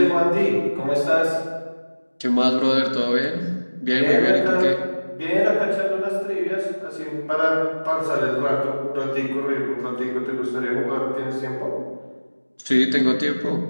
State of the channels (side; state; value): both; inverted; correlation -1.00